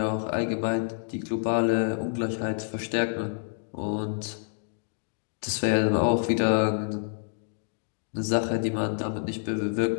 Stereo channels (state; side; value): silent; right; digital silence